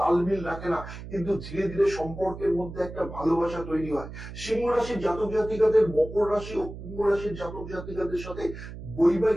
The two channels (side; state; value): right; noise; hum, 12 dB below the sound